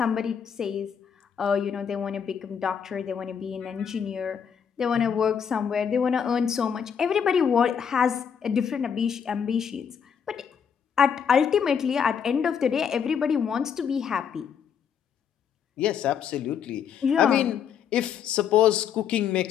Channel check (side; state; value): right; quieter; 7.5 dB